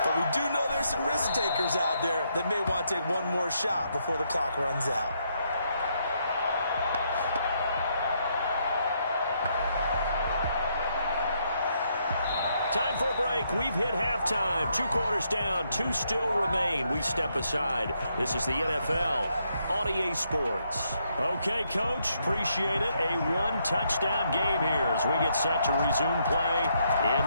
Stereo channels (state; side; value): inverted; both; correlation -0.76